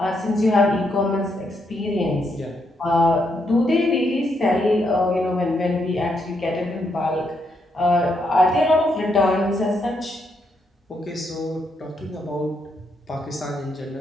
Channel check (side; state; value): both; normal; correlation 0.78